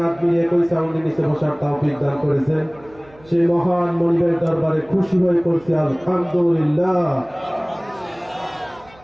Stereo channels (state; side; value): noise; right; hum, 26 dB below the sound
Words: মিলিয়ে একই সাউন্ডের নিচে বসার তৌফিক দান করেছেন সেই মহান মনিবের দরবারে খুশি হয়ে পড়ছি আলহামদুলিল্লাহ।